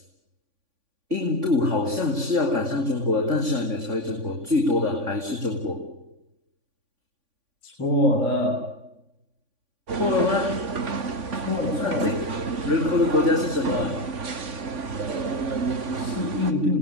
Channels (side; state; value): left; late; 3.5 ms